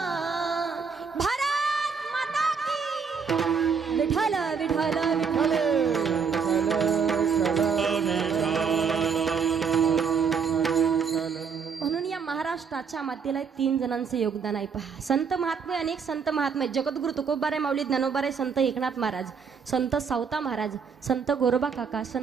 भारत माता की. विठ्ठल विठ्ठल विठ्ठल. म्हणून या महाराष्ट्राच्या मातेला 3 जणांचे योगदान आहे पहा. संत महात्मे, अनेक संत महात्मे, जगद्गुरु तुकोबाराय माऊली ज्ञानोबाराय, संत एकनाथ महाराज, संत सावता महाराज, संत गोरोबा काका,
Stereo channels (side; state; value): left; quieter; 6.0 dB